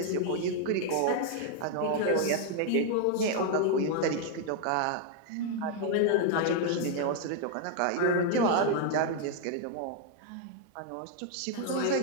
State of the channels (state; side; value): different; both; correlation 0.00